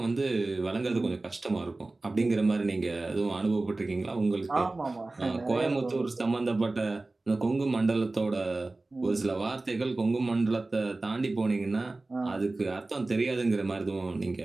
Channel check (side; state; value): left; quieter; 3.1 dB